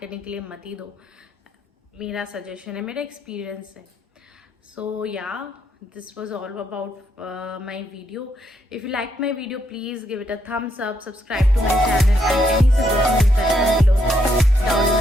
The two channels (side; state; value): both; normal; correlation 0.76